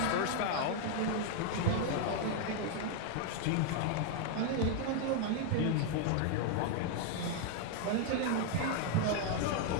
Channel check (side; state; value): both; different; correlation 0.00